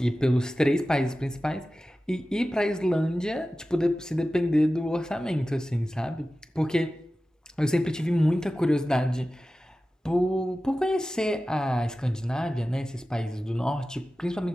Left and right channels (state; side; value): normal; both; correlation 0.95